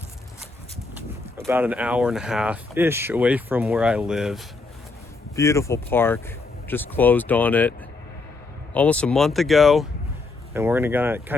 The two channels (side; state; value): right; quieter; 3.8 dB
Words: about an hour and a half-ish away from where I live. Beautiful park, just closed on it almost a month ago, and we're gonna